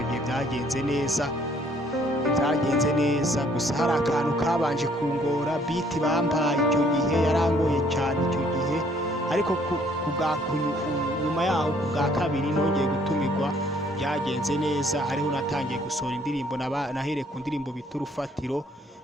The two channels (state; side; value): normal; both; correlation 0.63